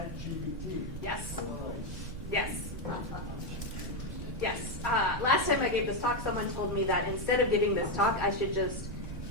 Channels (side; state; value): both; normal; correlation 0.05